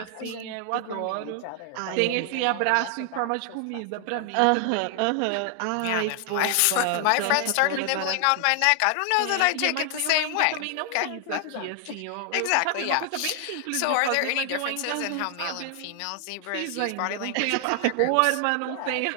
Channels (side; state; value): both; different; correlation 0.00